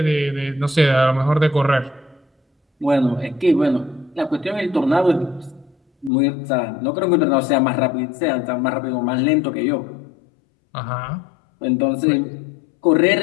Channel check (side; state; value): right; drops out; at 6.1 s